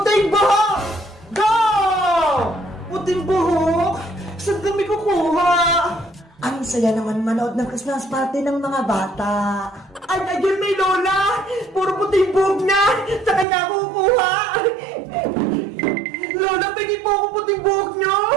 buhok. Go! Puting buhok? Saan kami kukuha? Ang saya naman manood ng Christmas party ng mga bata. Ay, ayun may lola! Puro puting buhok na! Sa kanya ako kukuha! Lola, pagi po ako puting buhok nyo!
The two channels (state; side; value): drops out; left; at 13.5 s